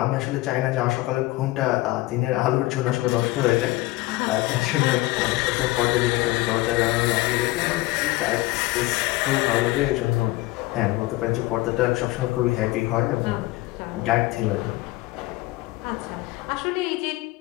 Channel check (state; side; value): quieter; right; 19.1 dB